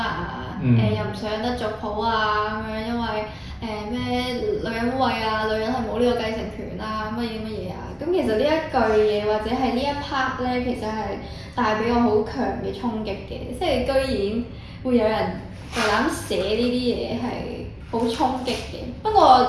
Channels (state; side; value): identical; both; correlation 1.00